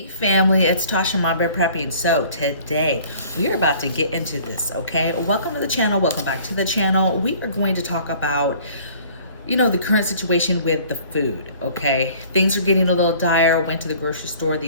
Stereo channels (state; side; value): inverted; both; correlation -0.51